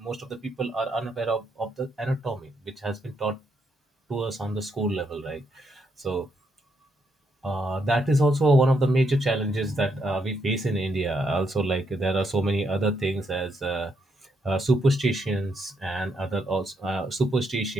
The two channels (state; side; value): normal; both; correlation 0.77